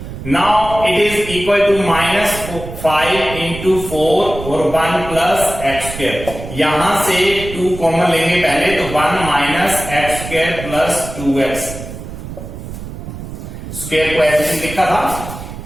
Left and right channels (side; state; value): right; noise; rumble, 10 dB below the sound